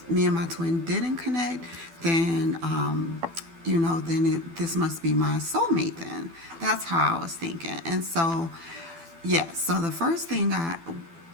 me and my twin didn't connect, then, this must be my soulmate then. That's how I was thinking. And so, yeah, so the first thing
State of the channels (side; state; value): left; late; 12 ms